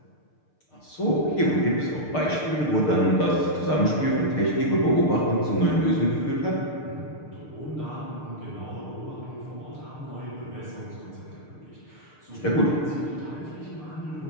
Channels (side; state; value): right; late; 6.6 ms